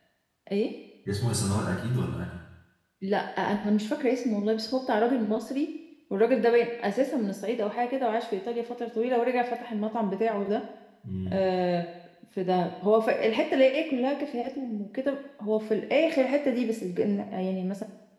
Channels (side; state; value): both; identical; correlation 1.00